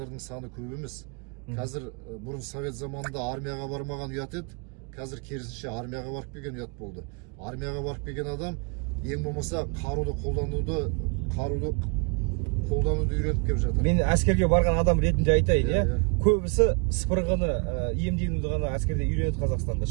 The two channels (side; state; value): left; quieter; 33.8 dB